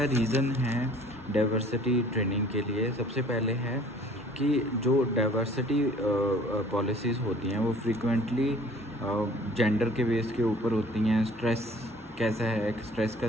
रीज़न है डाइवर्सिटी ट्रेनिंग के लिए? सबसे पहले है कि जो डाइवर्सिटी पॉलिसीज़ होती हैं वो फ्रीक्वेंटली जेंडर के बेस के ऊपर होती हैं। स्ट्रेस कैसा है, स्ट्रेस का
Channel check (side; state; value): both; normal; correlation 0.53